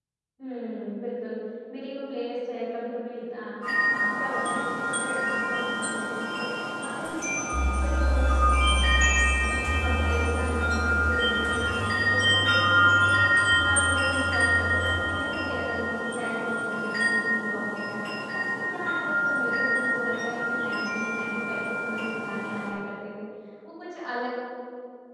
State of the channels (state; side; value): identical; both; correlation 1.00